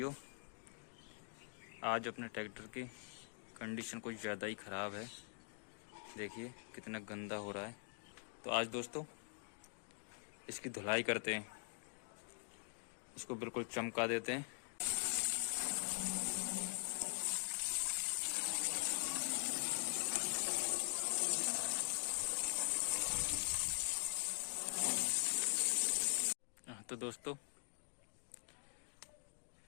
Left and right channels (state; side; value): silent; right; digital silence